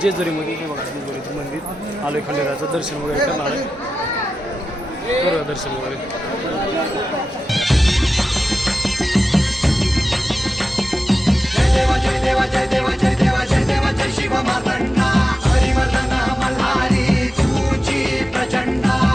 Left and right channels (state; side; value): normal; both; correlation 0.92